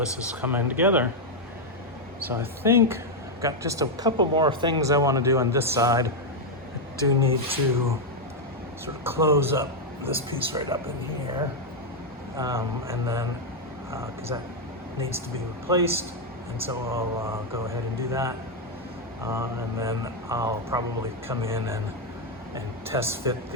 is coming together. So I think I've got just a couple more things I want to do on this side. I do need to sort of close up this piece right up in here, and then because that needs to be replaced, and so I'll go ahead and do that, and then I'll probably come in and test fit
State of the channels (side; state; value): both; normal; correlation 0.01